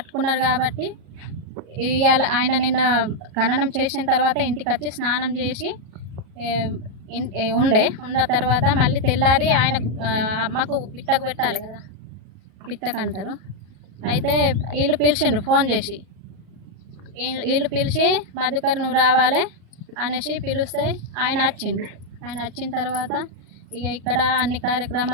కాబట్టి ఇవాళ ఆయన నిన్న ఖననం చేసిన తర్వాత ఇంటికి వచ్చి స్నానం చేసి ఉన్న తర్వాత మళ్ళీ తెల్లారి ఆయన అమ్మకు పిట్టకు పెట్టాలి కదా, పిట్టకు అంటారు. అయితే వీళ్ళు పిలిచిండ్రు ఫోన్ చేసి. వీళ్ళు పిలిచి మధుకర్ నువ్వు రావాలి అనేసి పిలిస్తే ఆయన వచ్చిండు. ఆయన వచ్చిన తర్వాత ఇక ఇక్కడ అన్ని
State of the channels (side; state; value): left; late; 37 ms